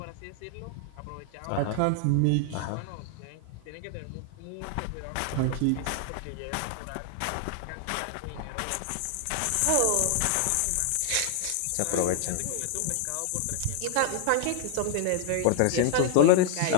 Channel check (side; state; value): both; different; correlation 0.00